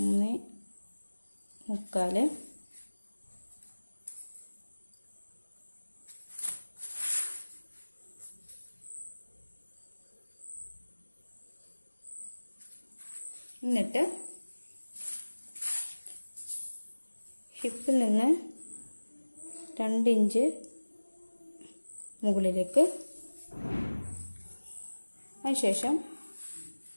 എന്നിട്ട് ഹിപ്പിൽ നിന്ന് 2 ഇഞ്ച് മുകളിലേക്ക്, അതിനുശേഷം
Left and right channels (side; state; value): both; inverted; correlation -1.00